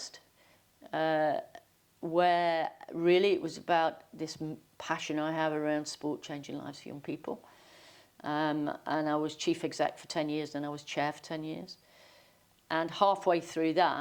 where really it was about this passion I have around sport changing lives for young people. And I was chief exec for 10 years, and I was chair for 10 years. And halfway through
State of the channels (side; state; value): both; identical; correlation 1.00